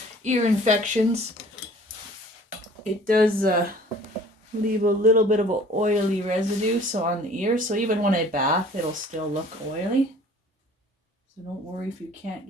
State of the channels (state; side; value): normal; both; correlation 0.50